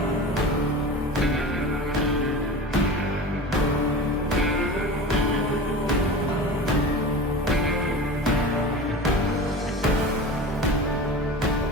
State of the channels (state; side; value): normal; both; correlation 0.33